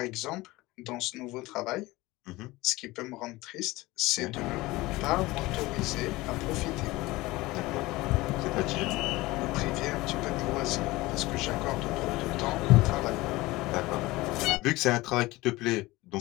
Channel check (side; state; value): right; quieter; 20.1 dB